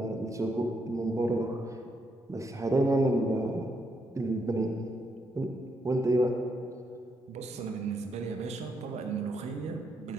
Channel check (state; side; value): normal; both; correlation 0.78